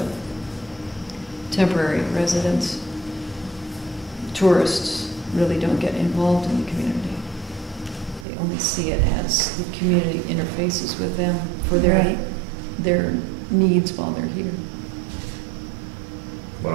temporary residents, tourists, really don't get involved in the community. They only see it as the community interfaces with them for Right. their needs while they're here. what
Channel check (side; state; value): left; drops out; at 8.2 s